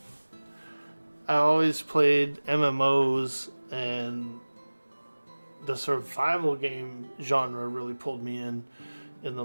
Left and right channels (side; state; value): both; inverted; correlation -1.00